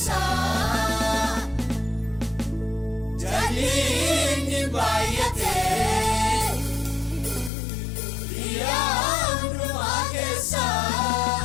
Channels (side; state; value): right; drops out; at 7.5 s